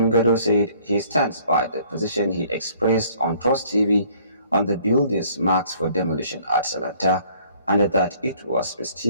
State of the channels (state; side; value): inverted; both; correlation -0.59